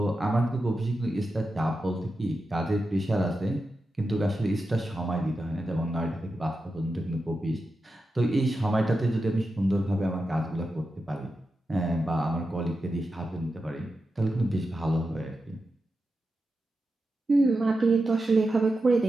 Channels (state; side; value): normal; both; correlation 0.90